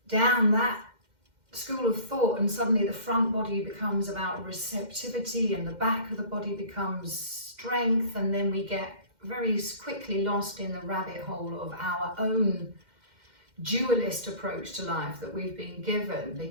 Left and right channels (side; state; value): left; late; 2.1 ms